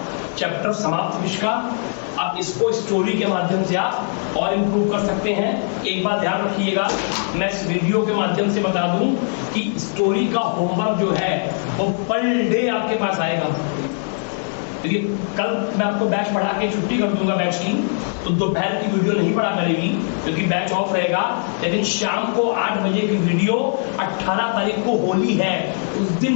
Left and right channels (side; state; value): right; silent; 65 dB below the other